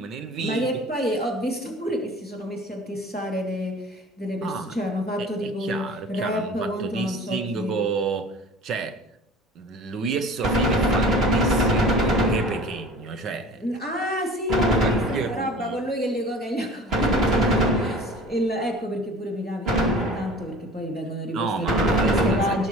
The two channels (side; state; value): both; normal; correlation 0.43